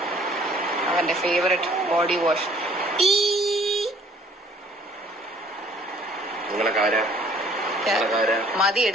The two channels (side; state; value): both; normal; correlation 0.57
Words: അവന്റെ ഫേവറേറ്റ് ബോഡി വാഷ്. മതി